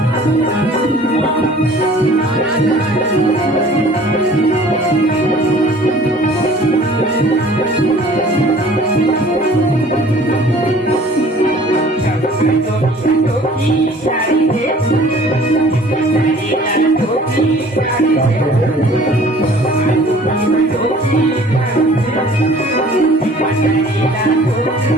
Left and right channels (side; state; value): both; normal; correlation 0.51